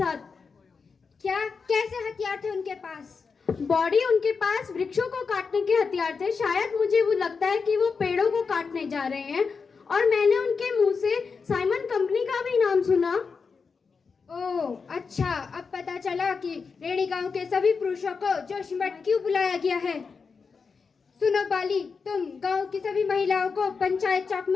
क्या? कैसे हथियार थे उनके पास? बॉडी, उनके पास वृक्षों को काटने के हथियार थे। शायद मुझे वो लगता है कि वो पेड़ों को काटने जा रहे हैं। और मैंने उनके मुंह से साइमन कंपनी का भी नाम सुना। ओह अच्छा, अब पता चला कि रेणी गांव के सभी पुरुषों को जोशीमठ क्यों बुलाया गया है। सुनो बाली, तुम गांव की सभी महिलाओं को पंचायत चौक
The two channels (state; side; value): quieter; right; 5.2 dB